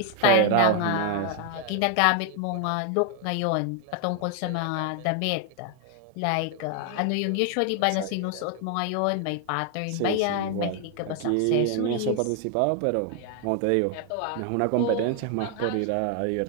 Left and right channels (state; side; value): different; both; correlation 0.00